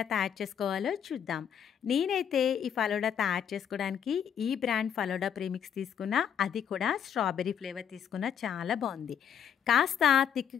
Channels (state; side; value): quieter; right; 8.5 dB